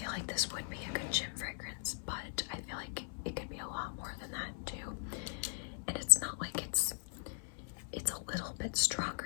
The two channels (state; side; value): silent; right; 52 dB below the other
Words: like this would be a good gym fragrance, but I feel like it could be a lot more than that too. And it's not like it's a little bit